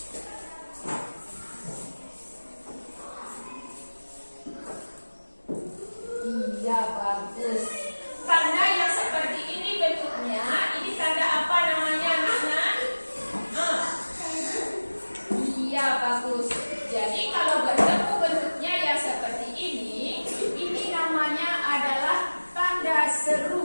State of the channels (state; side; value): inverted; both; correlation -1.00